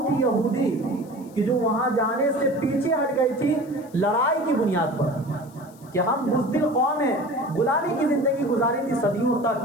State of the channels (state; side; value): noise; left; hiss, 27 dB below the sound